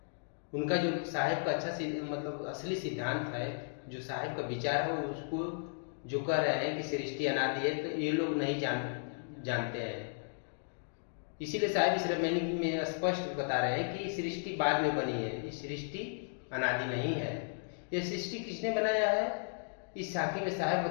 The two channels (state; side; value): silent; right; digital silence